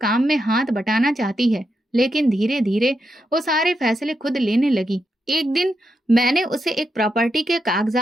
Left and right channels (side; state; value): both; normal; correlation 0.84